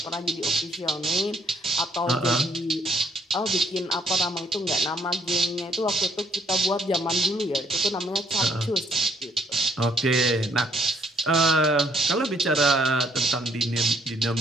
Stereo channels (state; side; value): normal; both; correlation 0.68